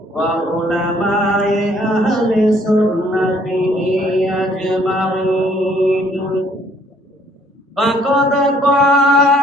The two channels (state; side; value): normal; both; correlation 0.62